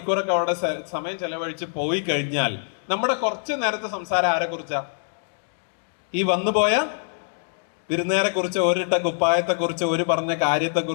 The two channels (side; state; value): right; silent; digital silence